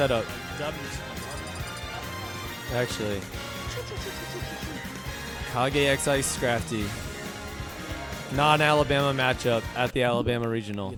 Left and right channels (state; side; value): identical; both; correlation 1.00